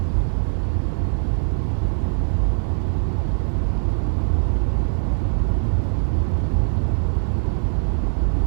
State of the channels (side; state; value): left; silent; 65 dB below the other